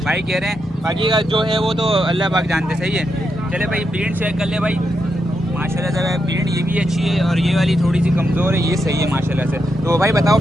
भाई कह रहे हैं। बाकी का जो है वो तो अल्लाह पाक जानते, सही है। चले भाई प्रिंट चेक कर ले भाई माशाल्लाह से भाई। प्रिंट ये भी अच्छी है और ये वाली थोड़ी सी कमज़ोर है, ये सही है माशाल्लाह से। तो भाई बताओ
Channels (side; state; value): both; normal; correlation 0.84